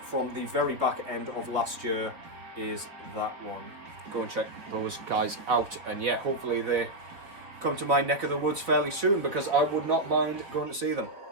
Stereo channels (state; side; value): late; left; 4.2 ms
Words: from the very back end of last year is that one. Go and check those guys out, and yeah, hopefully they come to my neck of the woods fairly soon, because I would not mind going to see them.